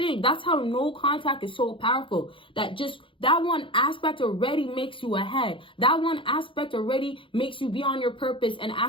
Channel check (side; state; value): right; late; 0.25 ms